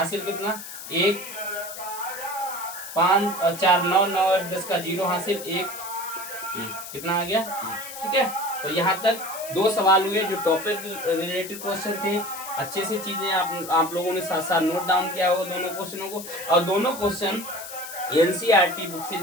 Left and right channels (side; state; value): left; noise; hiss, 11 dB below the sound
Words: कितना 1 5 4 9 9 10 का 0 हासिल 1 कितना आ गया 1। ठीक है, तो यहाँ तक 2 सवाल हुए जो टॉपिक रिलेटेड क्वेश्चन थे। अच्छे से चीजें आप लोगों ने साथ साथ नोट डाउन किया होगा दोनों क्वेश्चनों को, और दोनों क्वेश्चन NCERT बुक से